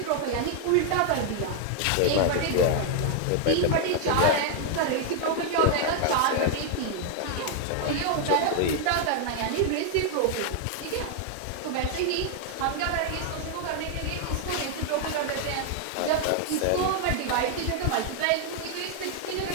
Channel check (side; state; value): both; different; correlation 0.00